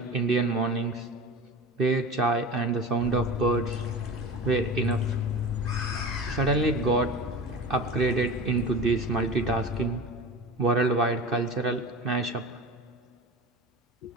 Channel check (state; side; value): normal; both; correlation 0.31